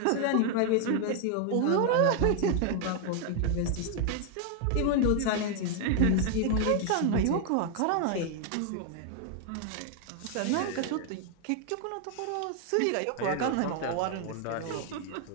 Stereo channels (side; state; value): both; different; correlation 0.00